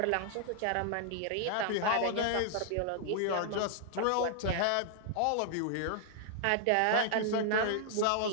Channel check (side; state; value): both; different; correlation -0.01